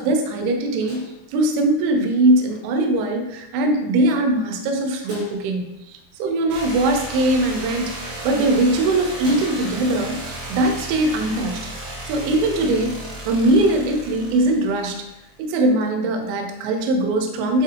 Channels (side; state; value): left; late; 23 ms